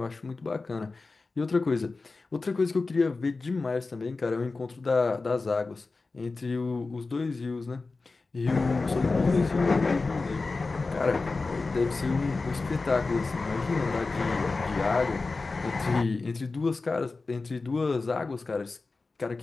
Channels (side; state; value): right; quieter; 3.8 dB